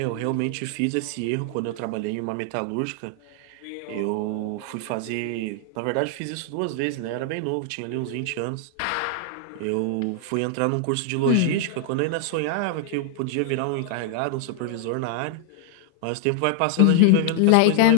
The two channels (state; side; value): different; both; correlation 0.00